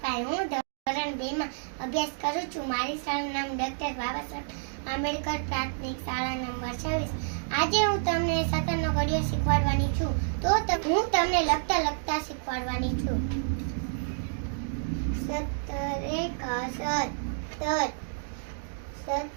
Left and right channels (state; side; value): silent; left; digital silence